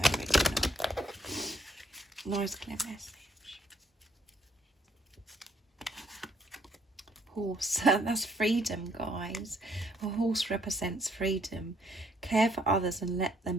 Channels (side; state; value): both; normal; correlation 0.67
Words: already know? Nice clear message. Horse, that's freedom, guys. A horse represents freedom. Care for others and let